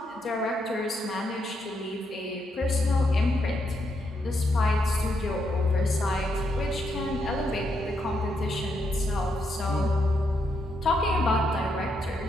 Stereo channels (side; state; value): both; normal; correlation 0.79